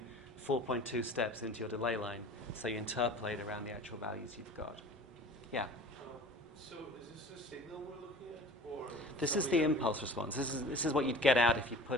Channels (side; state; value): both; normal; correlation 0.42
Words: 4.2 steps into your delay line, so you interpolate around the actual values you've got. Yeah? So is this the signal we're looking at? Or this is the impulse response. This is what you'd get out if you